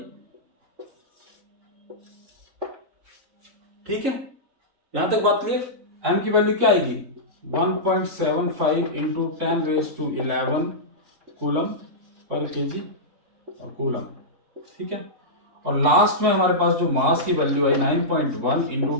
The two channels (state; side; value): late; left; 3.6 ms